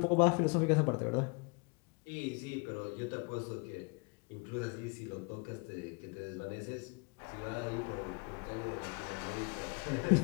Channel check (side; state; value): right; quieter; 32.1 dB